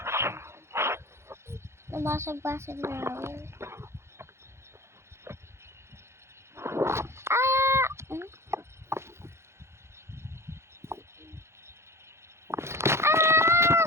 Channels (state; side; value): late; left; 0.13 ms